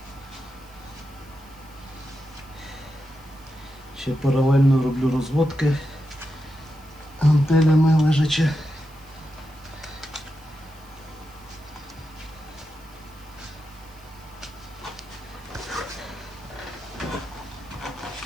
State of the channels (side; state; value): right; noise; hiss, 26 dB below the sound